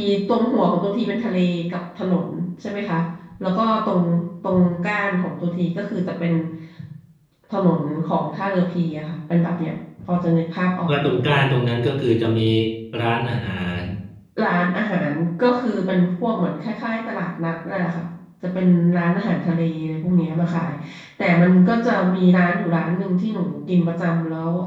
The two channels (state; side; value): identical; both; correlation 1.00